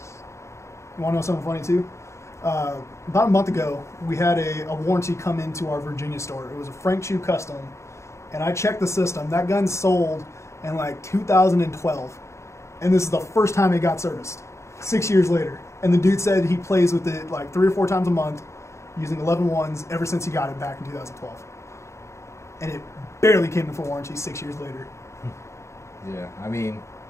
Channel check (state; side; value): late; right; 0.14 ms